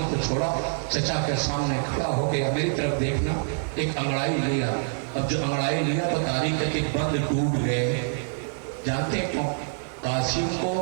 کو چھوڑا, چچا کے سامنے کھڑا ہو گیا. میری طرف دیکھنا, ایک انگڑائی لیا. اب جو انگڑائی لیا تو تاریخ کے بند ٹوٹ گئے. جانتے کیوں؟ قاسم کو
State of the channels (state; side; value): silent; left; 61 dB below the other